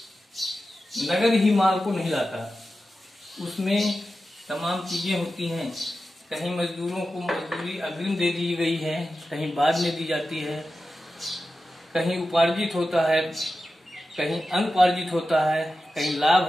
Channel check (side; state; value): both; normal; correlation 0.92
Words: नगद ही माल को नहीं लाता, उसमें तमाम चीजें होती हैं। कहीं मजदूरों को मजदूरी अग्रिम दे दी गई है, कहीं बाद में दी जाती है, कहीं उपार्जित होता है, कहीं अनुपार्जित होता है, कहीं लाभ